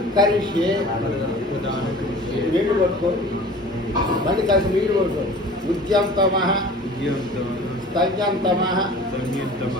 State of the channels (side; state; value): both; normal; correlation 0.42